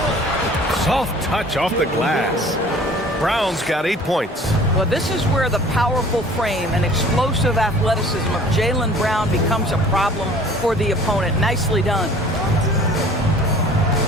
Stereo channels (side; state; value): both; normal; correlation 0.49